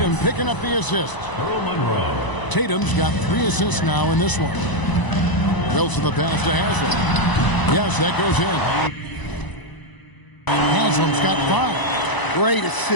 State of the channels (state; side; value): late; right; 1.0 ms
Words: picking up the assist. Tatum's got 3 assists now in this one. Wilson the pass to Haslam. Yes, that goes in. Haslam's got 5. Great